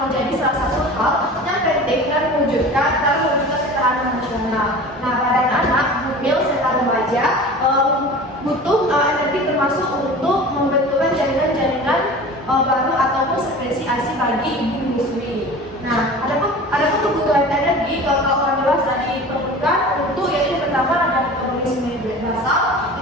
menjadi salah satu hal yang penting dan mewujudkan ketahanan nasional. Nah, pada anak, hamil serta remaja butuh energi termasuk untuk membentukkan jaringan-jaringan baru ataupun sekresi ASI bagi ibu menyusui. Nah, ada kebutuhan energi kalau orang dewasa diperlukan untuk yaitu pertama ada metabolisme basal, yang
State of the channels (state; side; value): normal; both; correlation 0.38